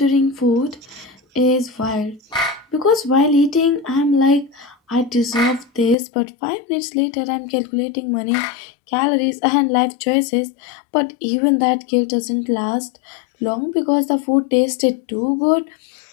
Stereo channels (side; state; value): right; drops out; at 6.0 s